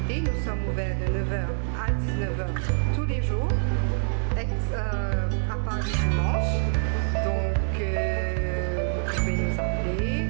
nous sommes ouverts de 9h à 19h tous les jours, à part le dimanche. Donc vous pouvez nous appeler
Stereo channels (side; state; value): left; silent; 61 dB below the other